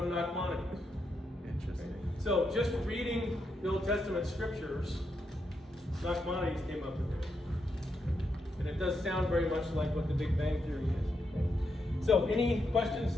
Nachmanides. Interesting. So, just reading the Old Testament scriptures, Nachmanides came up with it. And it does sound very much like what the Big Bang Theory is. So, any questions,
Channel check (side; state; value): both; normal; correlation 0.82